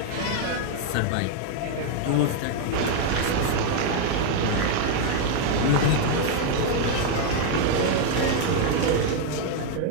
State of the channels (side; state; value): both; different; correlation 0.00